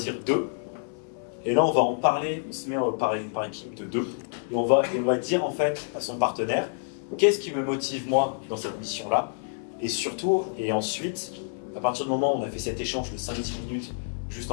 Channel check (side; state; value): right; silent; digital silence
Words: 2. Et là, on va en parler, on se met par équipe de 2. Et on va dire en fait à son partenaire, qu'est-ce qui me motive moi dans cette mission-là, et surtout, et ensuite, à partir du moment où on a fait cet échange de 5-10 minutes, juste